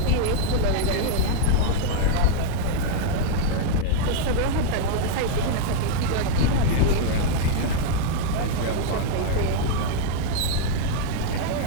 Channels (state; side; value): different; both; correlation 0.00